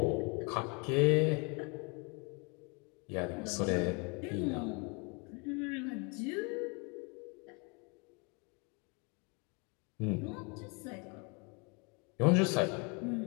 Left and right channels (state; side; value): quieter; right; 32.1 dB